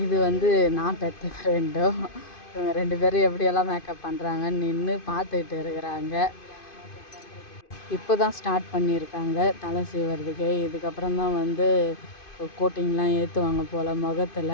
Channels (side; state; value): right; late; 2.5 ms